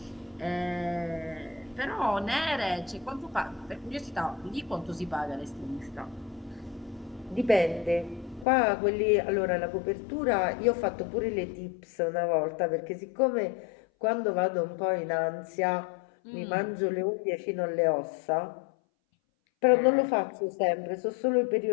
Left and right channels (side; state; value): right; drops out; at 8.5 s